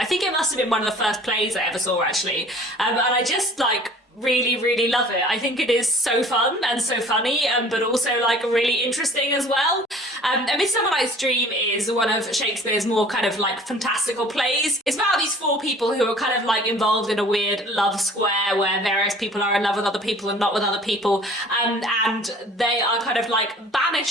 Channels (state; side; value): normal; both; correlation 0.49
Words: think it must have been one of the first plays I ever saw actually, and I just like really, really love it. I think it is so fun and so funny, but also like really interesting as well. A Midsummer Night's Dream is one of Shakespeare's more kind of like fantastical plays. It's about these four people who are kind of like involved in a weird love square where various people are in love with other people and not with other people, and they are kind of like